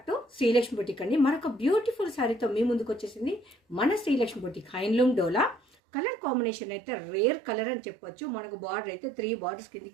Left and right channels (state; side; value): drops out; left; at 5.6 s